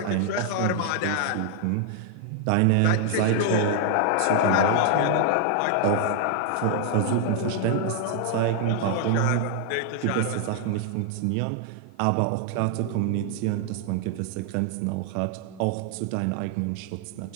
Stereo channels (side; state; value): both; different; correlation 0.00